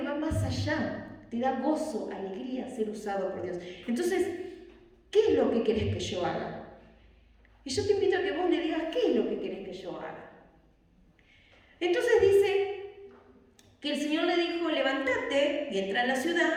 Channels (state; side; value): identical; both; correlation 1.00